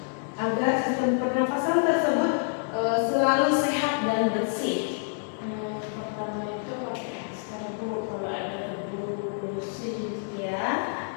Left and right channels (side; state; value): right; silent; digital silence